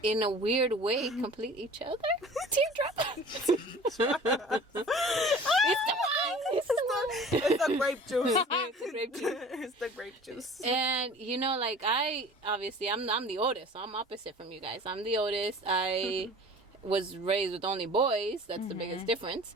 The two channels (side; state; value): both; normal; correlation 0.44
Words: in a weird way, complete each other. Teardrop. It's the wine. It's the grape juice. It's the grape juice. It's the grape juice. And, you know, like, I'm the oldest, so I'm opposite from you guys. I'm the oldest. I was raised with only boys. That's the biggest difference.